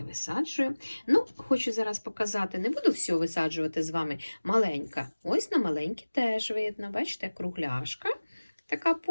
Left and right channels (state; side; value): inverted; both; correlation -1.00